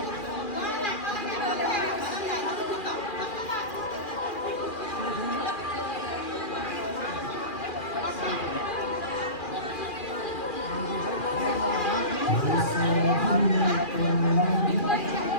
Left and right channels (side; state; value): right; late; 2.4 ms